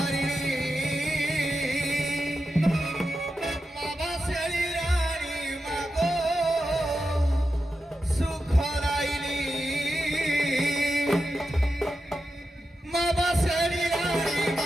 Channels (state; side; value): normal; both; correlation 0.90